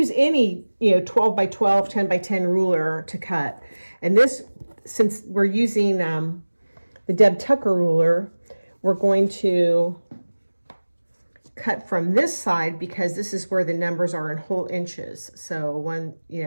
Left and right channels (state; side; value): inverted; both; correlation -1.00